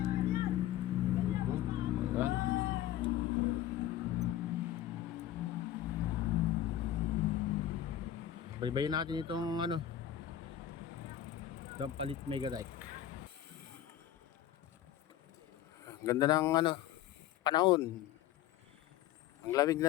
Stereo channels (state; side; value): quieter; right; 11.9 dB